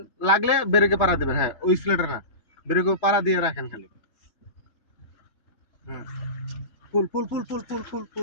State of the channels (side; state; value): right; late; 2.9 ms